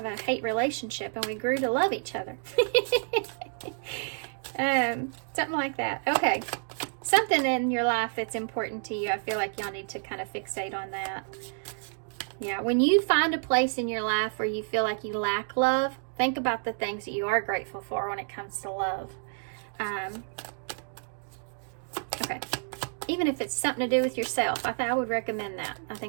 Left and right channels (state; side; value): silent; left; digital silence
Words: a hate relationship, and we grew to love each other. Something like that. Okay. Something in your life that's important to you. I feel like y'all need to kind of fixate on that. Yeah, when you find a place in your life where you feel like you lack love, think about the things that you are grateful for when it comes to love. Okay. Even if it's something to do with yourself, I would recommend that. I